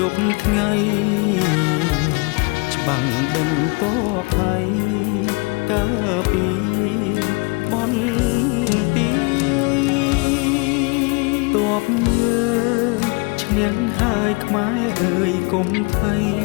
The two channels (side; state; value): right; quieter; 29.2 dB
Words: ប់ថ្ងៃច្បាំងដេញទ័ពថៃកាពីបនទីទ័ពយើងឈ្នះហើយខ្មែរអើយកុំភ័យ